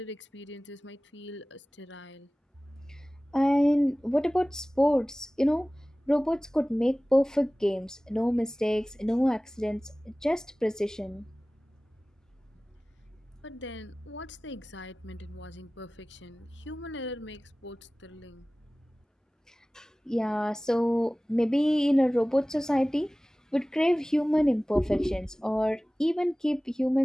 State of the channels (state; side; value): normal; both; correlation 0.98